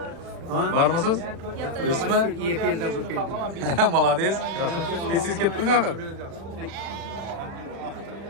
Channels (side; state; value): left; late; 36 ms